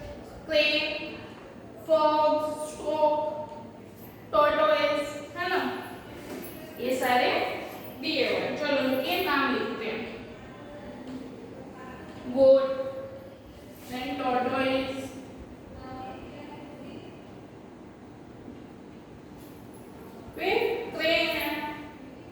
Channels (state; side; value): identical; both; correlation 1.00